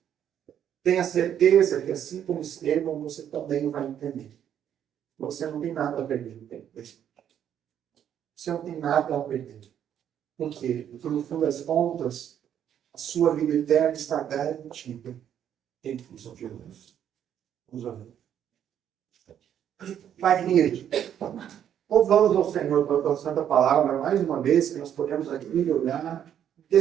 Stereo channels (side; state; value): left; quieter; 9.7 dB